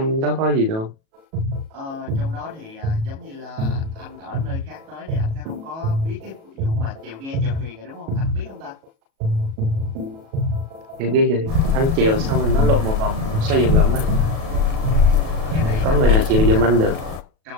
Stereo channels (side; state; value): left; late; 37 ms